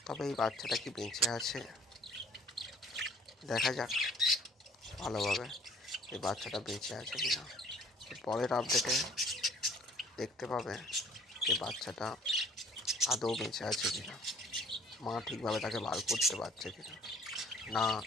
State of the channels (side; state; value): both; normal; correlation 0.55